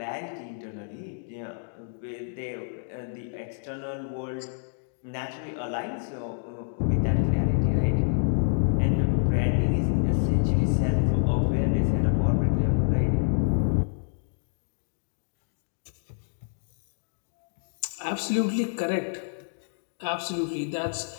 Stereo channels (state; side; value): silent; right; digital silence